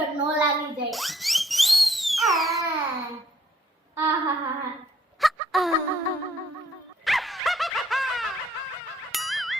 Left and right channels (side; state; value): both; normal; correlation 0.66